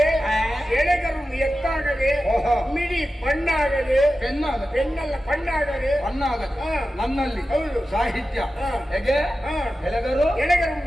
ಎತ್ತಾಗದೆ ಓಹೋ. ಮಿಡಿ ಬಣ್ಣಾಗದೆ ಪೆನ್ನಲ್ಲ ಬಣ್ಣಾಗದೆ ನನ್ನಲ್ಲಿ ಹೌದು. ಸಾಹಿತ್ಯ ಹಾ. ಹೇಗೆ ಎಲೆಗರು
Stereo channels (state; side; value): normal; both; correlation 0.93